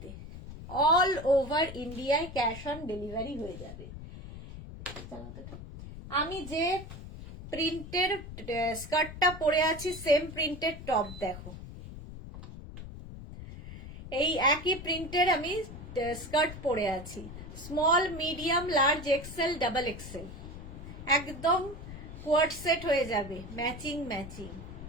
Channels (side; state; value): left; noise; rumble, 12 dB below the sound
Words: অল ওভার ইন্ডিয়ায় ক্যাশ অন ডেলিভারি হয়ে যাবে। আমি যে প্রিন্টের স্কার্টটা পরে আছি সেম প্রিন্টের টপ দেখো, এই একই প্রিন্টের আমি স্কার্ট পরে আছি, small, medium, large, XL, double XL. একদম কোয়ার্ড সেট হয়ে যাবে, ম্যাচিং ম্যাচিং।